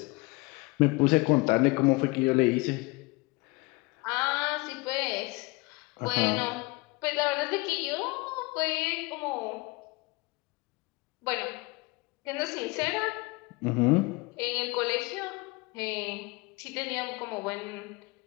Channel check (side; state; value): right; quieter; 25.2 dB